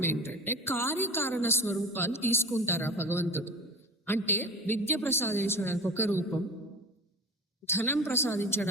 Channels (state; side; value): normal; both; correlation 0.33